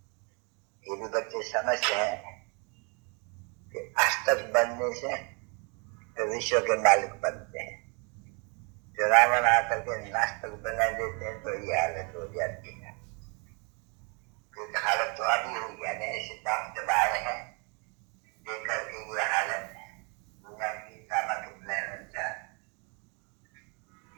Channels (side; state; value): left; quieter; 34.2 dB